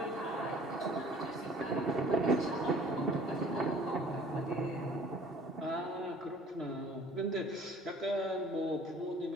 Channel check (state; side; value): normal; both; correlation 0.51